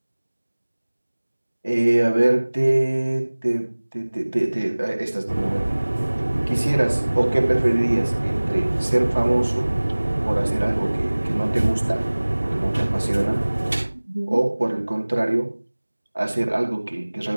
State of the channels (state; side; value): inverted; both; correlation -1.00